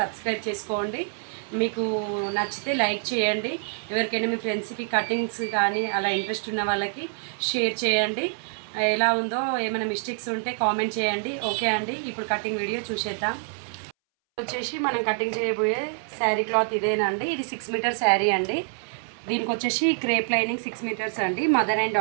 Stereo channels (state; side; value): silent; left; 61 dB below the other